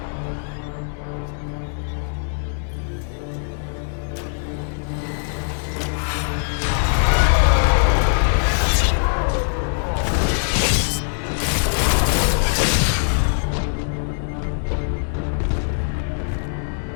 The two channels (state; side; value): silent; right; digital silence